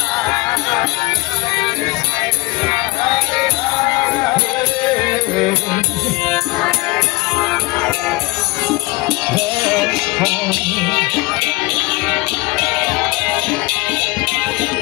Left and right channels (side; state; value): right; quieter; 23.1 dB